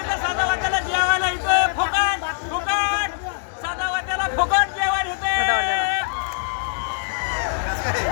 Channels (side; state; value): right; silent; digital silence